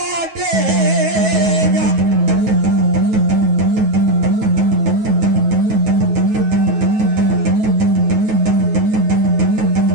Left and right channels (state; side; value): late; left; 9.3 ms